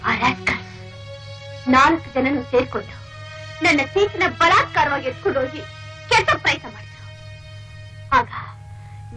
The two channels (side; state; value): both; identical; correlation 1.00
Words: ಆ ರಾಸ್ಕಲ್ 4 ಜನನು ಸೇರ್ಕೊಂಡು ನನ್ನ ಸೀಟಿನ ಬಲಾತ್ಕಾರವಾಗಿ ಎತ್ಕೊಂಡು ಹೋಗಿ ಕೆಟ್ಟ ಪ್ರಯತ್ನ ಮಾಡಿದ್ರು. ಆಗ